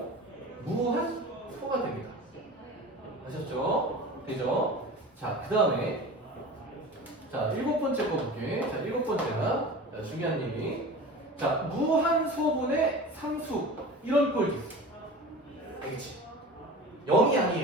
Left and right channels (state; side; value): normal; both; correlation 0.35